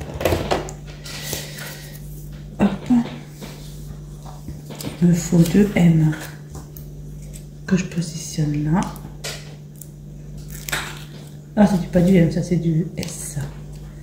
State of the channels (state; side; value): identical; both; correlation 1.00